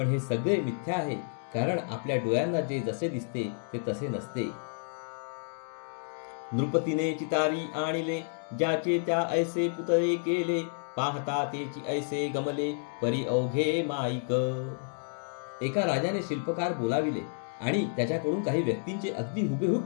हे सगळे मिथ्या आहे. कारण आपल्या डोळ्यांना जे जसे दिसते ते तसे नसते. नृपतीने चितारी आणिले ज्याचे त्या ऐसे पुतळे केले. पाहता तेची ऐसे गमले परी अवघे माईक. एका राजाने शिल्पकार बोलाविले आणि त्याच्याकडून काही व्यक्तींचे अगदी हुबेहूब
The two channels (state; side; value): silent; right; digital silence